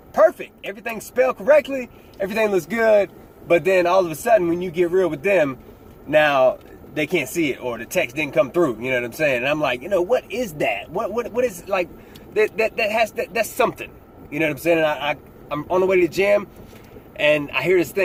Perfect. Everything's spelled correctly. Everything looks good. But then all of a sudden when you get real with them, now they can't see it or the text didn't come through. You know what I'm saying? And I'm like, you know, what is that? What is like that's something. You know what I'm saying? And I'm on the way to the gym and I hear this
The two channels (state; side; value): identical; both; correlation 1.00